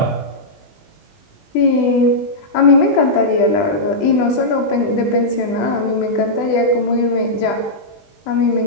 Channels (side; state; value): right; late; 20 ms